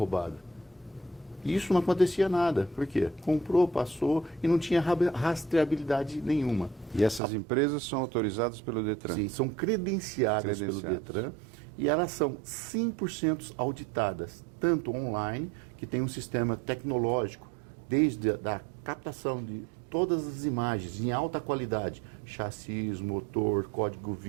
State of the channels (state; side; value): drops out; left; at 7.2 s